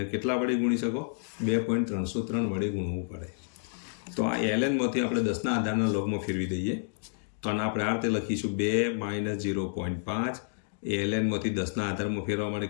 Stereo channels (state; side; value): silent; right; digital silence